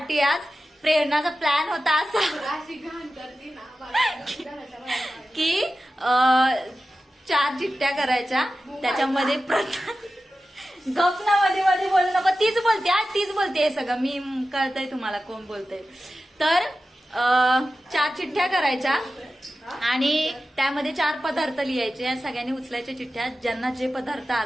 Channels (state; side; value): normal; both; correlation 0.94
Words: आज. प्रेरणाचा प्लॅन होता असा की 4 चिठ्ठ्या करायच्या, त्याच्यामध्ये गपना मध्ये मध्ये बोलू नको, तीच बोलते आज, तीच बोलते सगळं, मी कळतंय तुम्हाला कोण बोलतंय. तर 4 चिठ्ठ्या करायच्या आणि त्यामध्ये 4 पदार्थ लिहायचे. सगळ्यांनी उचलायच्या चिठ्ठ्या, ज्यांना जे पदार्थ